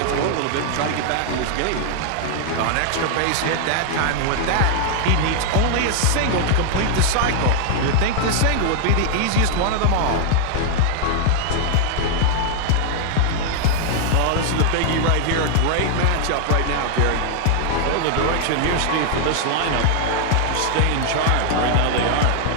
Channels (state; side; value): different; both; correlation 0.00